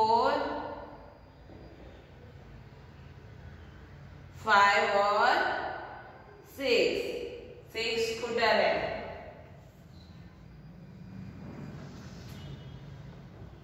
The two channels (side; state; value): both; identical; correlation 1.00